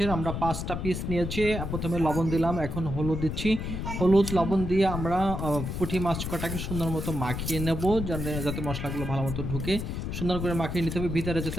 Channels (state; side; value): noise; left; rumble, 4 dB below the sound